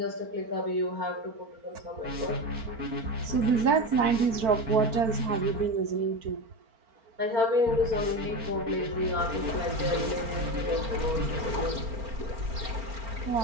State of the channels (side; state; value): left; late; 4.4 ms